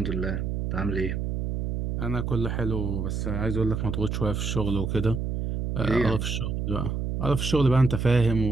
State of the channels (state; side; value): noise; right; hum, 2 dB below the sound